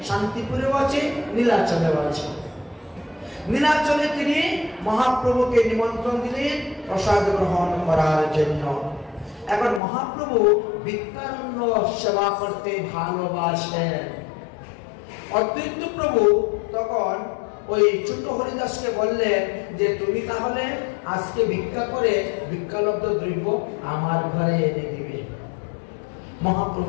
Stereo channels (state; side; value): drops out; right; at 9.8 s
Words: শান্তিপুরেও আছে, নীলাচলেও আছে। নীলাচলে তিনি মহাপ্রভুকে নিমন্ত্রণ দিলেন প্রসাদ গ্রহণ করার জন্য। এখন মহাপ্রভু ভিক্ষারণ্য সেবা করতে ভালোবাসেন। অদ্বৈত প্রভু তখন ওই ছোট হরিদাসকে বললেন যে তুমি তাহলে আজকে ভিক্ষা করে ভিক্ষালব্ধ দ্রব্য আমার ঘরে এনে দিবে।